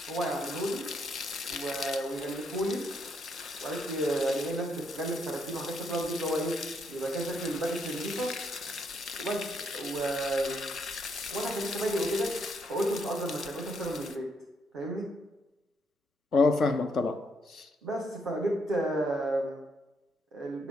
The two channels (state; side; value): normal; both; correlation 0.75